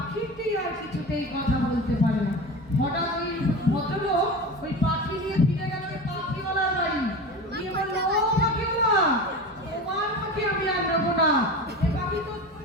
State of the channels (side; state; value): both; normal; correlation 0.29